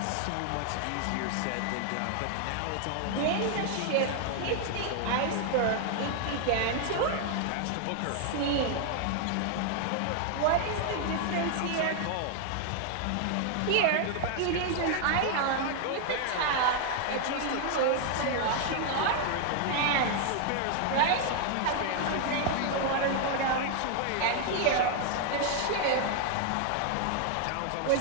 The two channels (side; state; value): both; different; correlation 0.00